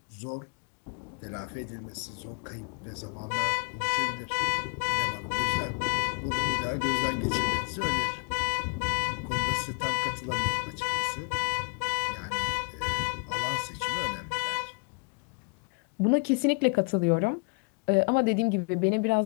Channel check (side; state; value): right; quieter; 35.6 dB